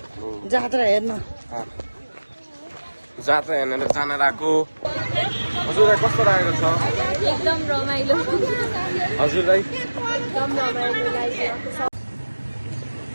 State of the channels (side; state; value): both; inverted; correlation -1.00